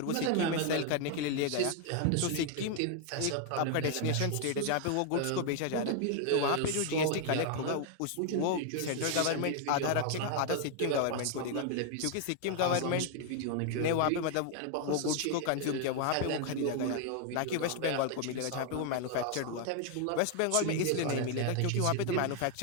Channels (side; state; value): both; different; correlation 0.00